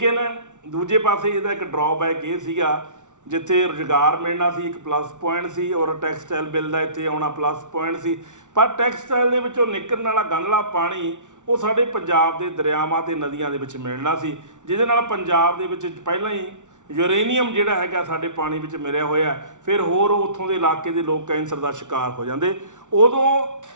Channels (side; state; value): left; late; 0.86 ms